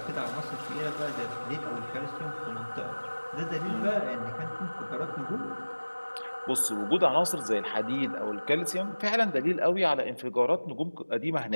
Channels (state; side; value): inverted; both; correlation -1.00